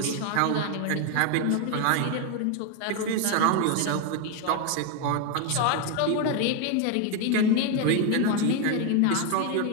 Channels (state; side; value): different; both; correlation 0.01